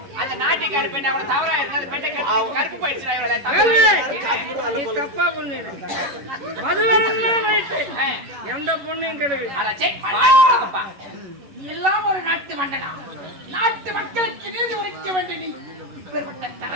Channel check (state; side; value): late; left; 11 ms